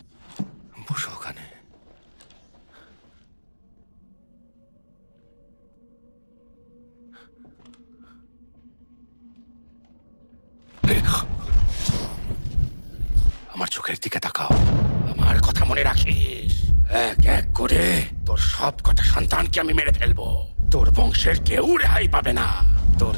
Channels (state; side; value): inverted; both; correlation -1.00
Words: বসো ওখানে। আমার চোখের দিকে তাকাও। আমার কথা মনে রাখিস। এক এক করে তোর সব কটা সন্তানকে আমি মেরে ফেলবো। তোর বংশের কেউ রেহাই পাবে না। তোর